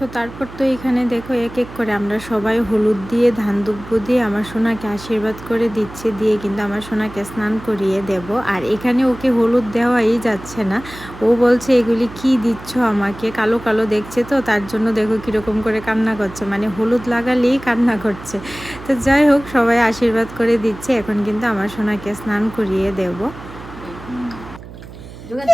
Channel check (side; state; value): right; noise; hum, 15 dB below the sound